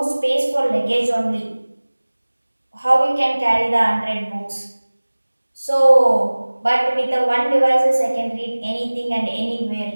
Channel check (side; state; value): both; inverted; correlation -1.00